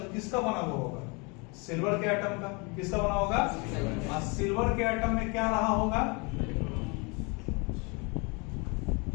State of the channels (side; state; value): right; quieter; 30.7 dB